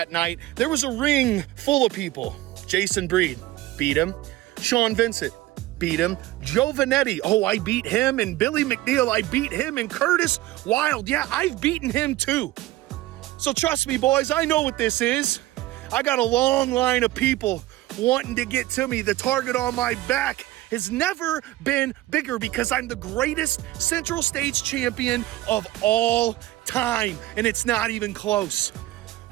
night, there was a ring full of people. Jason Breed, beat him. Sean Vincent, beat him. Joe Vanetti, oh, I beat him. And Billy McNeil, I beat him. And Curtis Wild, yeah, I've beaten him too. So trust me, boys, I know what this is. I got a long line of people wanting to get to me. The target on my back has never been bigger because I'm the greatest Central States champion of all time, and it's not even close.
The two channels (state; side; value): quieter; left; 16.6 dB